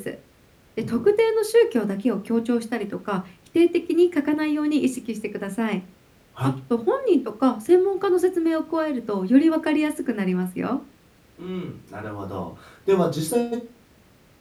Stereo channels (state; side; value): identical; both; correlation 1.00